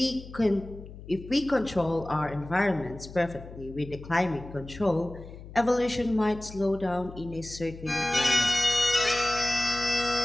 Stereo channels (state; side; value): noise; left; hum, 15 dB below the sound